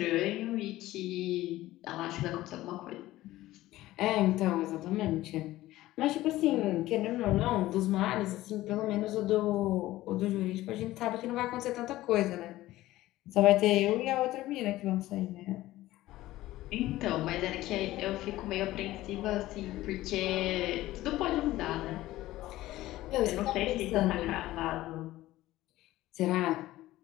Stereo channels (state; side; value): quieter; right; 16.3 dB